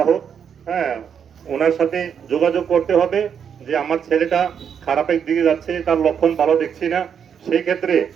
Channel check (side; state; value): left; quieter; 7.6 dB